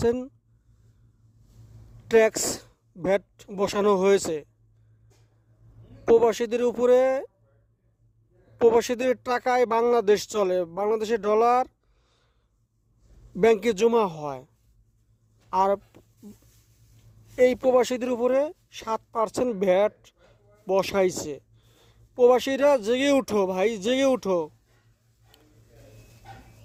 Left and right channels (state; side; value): identical; both; correlation 1.00